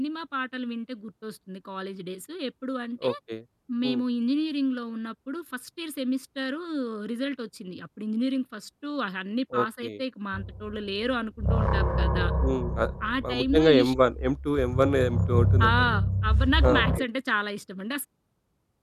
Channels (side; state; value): both; identical; correlation 1.00